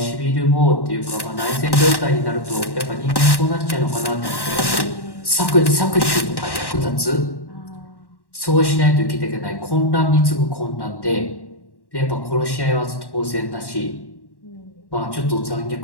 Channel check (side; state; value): right; late; 1.1 ms